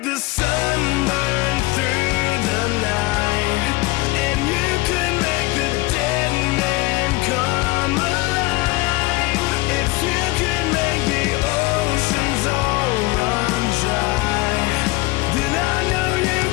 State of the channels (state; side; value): quieter; right; 21.3 dB